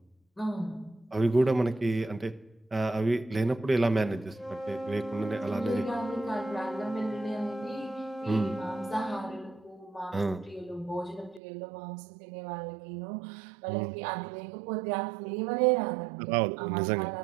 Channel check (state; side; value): drops out; left; at 11.4 s